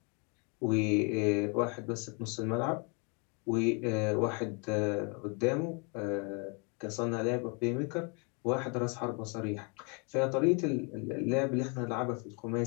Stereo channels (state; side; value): quieter; right; 34.4 dB